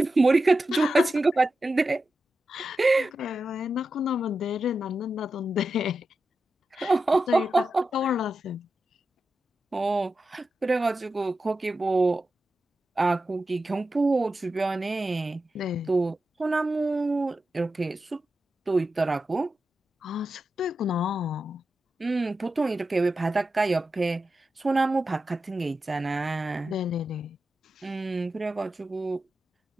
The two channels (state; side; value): normal; both; correlation 0.91